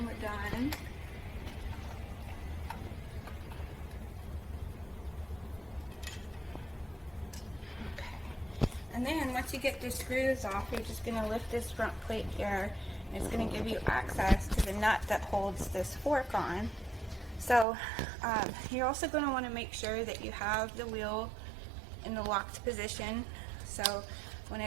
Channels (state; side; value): drops out; left; at 17.7 s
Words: we're done. And then once you get the screws off, you're just going to lift this front plate here, and it's going to give you access to the nut that holds this fork on. So you're also going to want to make sure that you have the wheel in the locked position. So when